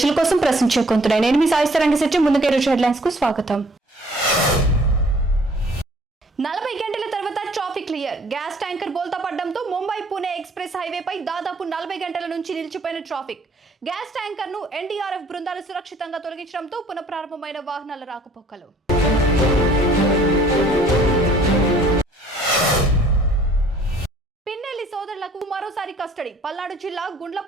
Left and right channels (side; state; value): both; normal; correlation 0.57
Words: కోసం ప్రశ్నించే కొంటున్నాయి. నేను మీ సాయిస్తరంగ శెట్టి. ముందుగా ఈరోజు హెడ్లైన్స్ కు స్వాగతం. 40 గంటల తర్వాత ట్రాఫిక్ క్లియర్. గ్యాస్ ట్యాంకర్ బోల్తా పడడంతో ముంబై పూణే ఎక్స్ప్రెస్ హైవేపై దాదాపు 40 గంటల నుంచి నిలిచిపోయిన ట్రాఫిక్. గ్యాస్ ట్యాంకర్ ను ఎన్డీఆర్ఎఫ్ బృందాలు సురక్షితంగా తొలగించడంతో పునఃప్రారంభమైన వాహనాల రాకపోకలు. పిన్నెల్లి సోదరులకు మరోసారి కస్టడీ. పల్నాడు జిల్లా